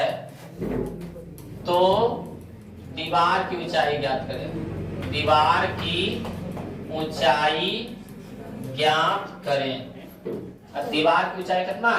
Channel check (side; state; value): both; identical; correlation 1.00